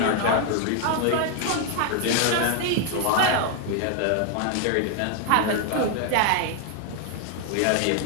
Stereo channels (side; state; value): both; different; correlation 0.00